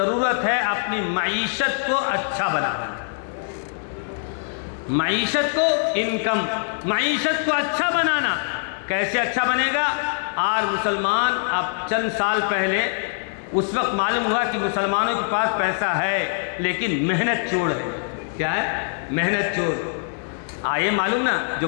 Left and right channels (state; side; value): silent; right; digital silence